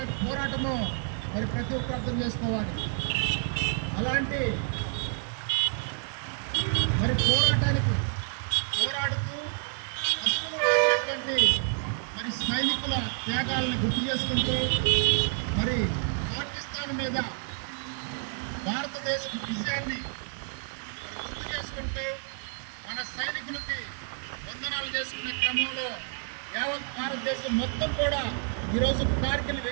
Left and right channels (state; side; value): silent; left; 58 dB below the other